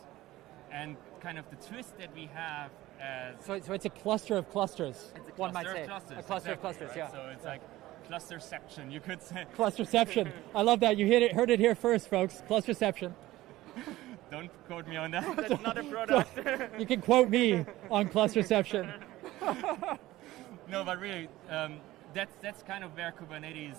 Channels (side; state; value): left; quieter; 16.7 dB